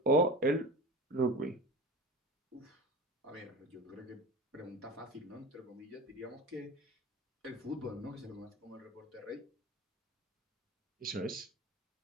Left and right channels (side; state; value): both; normal; correlation 0.31